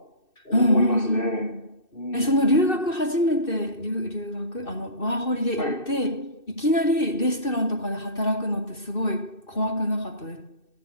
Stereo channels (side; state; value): right; late; 2.6 ms